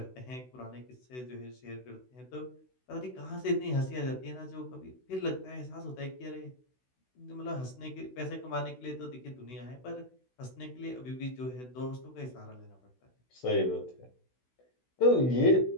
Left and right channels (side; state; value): right; late; 16 ms